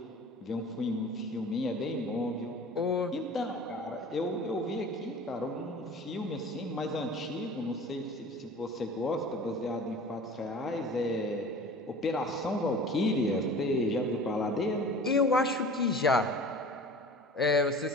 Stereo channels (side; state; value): both; normal; correlation 0.42